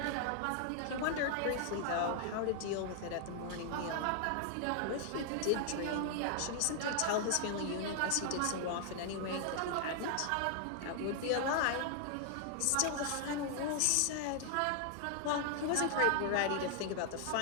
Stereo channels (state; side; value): different; both; correlation 0.00